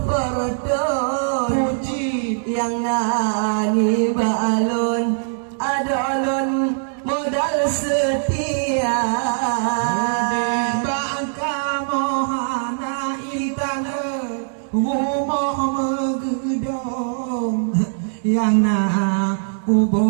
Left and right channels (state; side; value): silent; left; digital silence